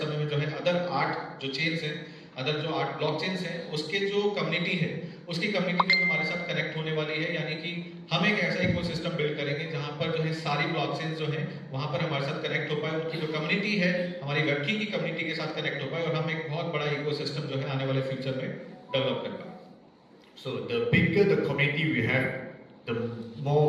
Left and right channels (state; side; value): identical; both; correlation 1.00